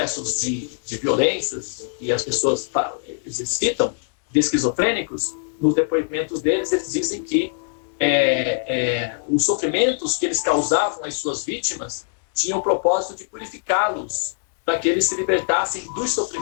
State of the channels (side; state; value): right; silent; 64 dB below the other